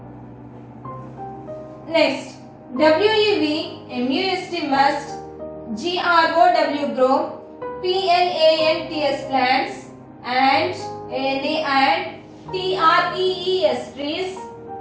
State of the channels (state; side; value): identical; both; correlation 1.00